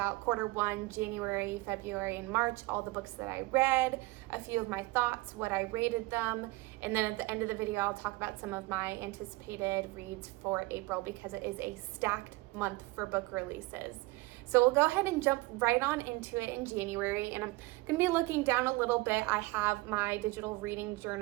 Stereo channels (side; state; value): left; quieter; 21.8 dB